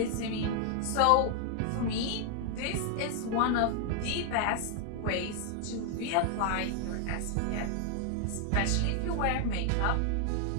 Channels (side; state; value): both; different; correlation 0.00